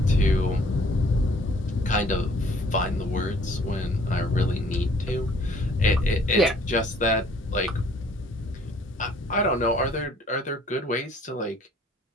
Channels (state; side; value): normal; both; correlation 0.58